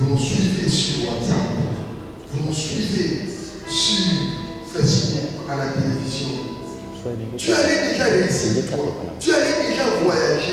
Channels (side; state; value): both; identical; correlation 1.00